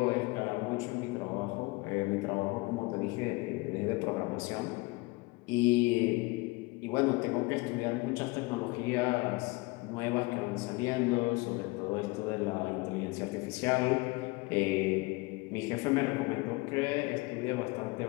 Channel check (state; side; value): quieter; right; 24.3 dB